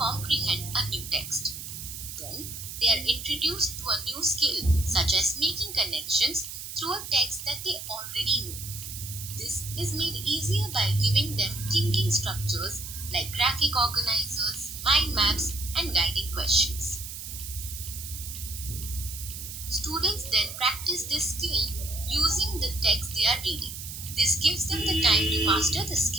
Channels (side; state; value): right; noise; hiss, 9 dB below the sound